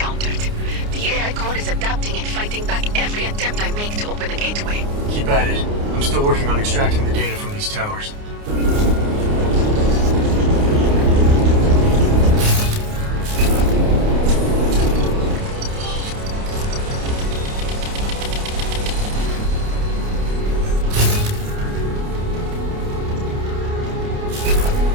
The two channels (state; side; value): late; left; 29 ms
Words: The AI core is adapting and fighting back every attempt I make to open a gateway. Keep at it. I'm still working on extracting the data from these towers.